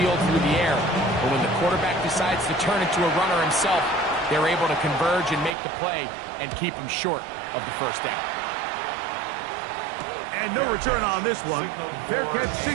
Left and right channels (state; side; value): drops out; left; at 5.5 s